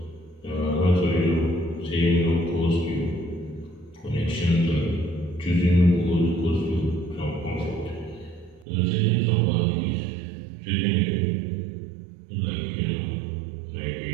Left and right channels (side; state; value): left; drops out; at 8.7 s